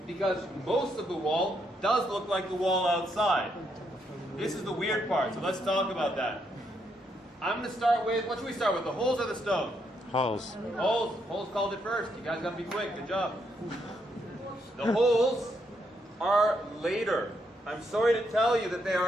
because most of the wall does look like the wall outside. This is the weird part, so let's talk about that. I'm going to start with, what should we start with, the holes or the stone? Holes. Holes. Holes called it first. You guys got to be quick. Good job. The holes are later. I'm sorry to tell you that they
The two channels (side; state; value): both; normal; correlation 0.77